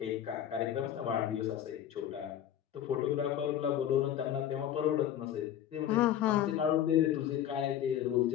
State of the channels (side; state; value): right; quieter; 10.7 dB